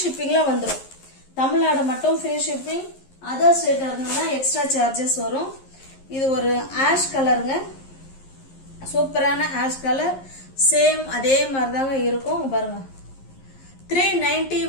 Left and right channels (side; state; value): right; late; 11 ms